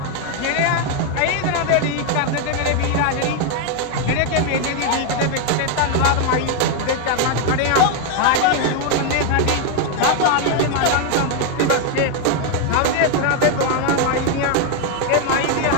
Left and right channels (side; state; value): both; different; correlation 0.01